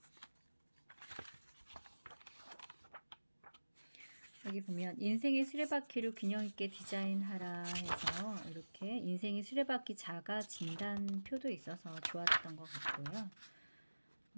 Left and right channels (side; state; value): both; inverted; correlation -1.00